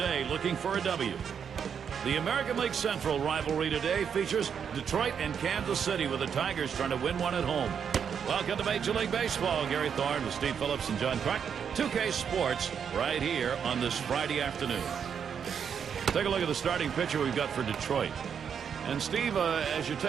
looking for a W. The American League Central rivalry today features Detroit and Kansas City, with the Tigers trying to win one at home. Welcome to Major League Baseball. Gary Thorne with Steve Phillips and John Clark. 2K Sports right here on this Friday afternoon. Take a look at the starting pitcher we've got for Detroit. And Steve, as you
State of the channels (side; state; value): left; quieter; 7.4 dB